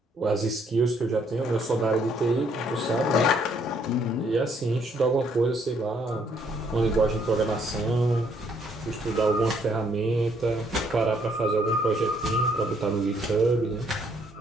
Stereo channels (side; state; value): both; normal; correlation 0.68